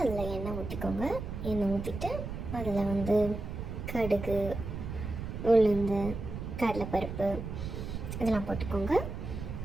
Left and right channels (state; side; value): noise; right; rumble, 6 dB below the sound